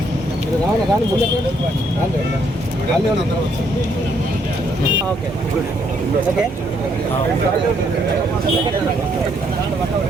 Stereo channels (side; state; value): both; normal; correlation 0.71